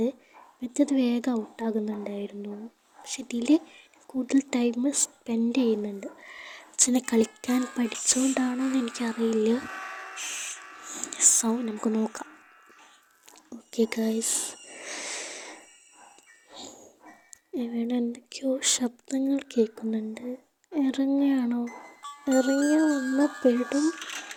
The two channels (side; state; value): both; identical; correlation 1.00